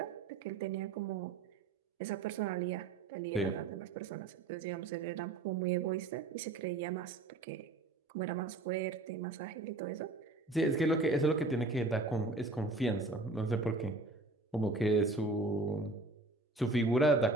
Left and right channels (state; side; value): quieter; left; 3.2 dB